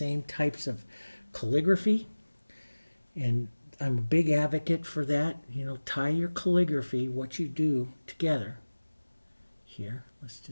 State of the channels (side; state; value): both; inverted; correlation -1.00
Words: types of calligraphy. And I'm a big advocate for that. You know, tie your calligraphy, what you do, together. Here, let's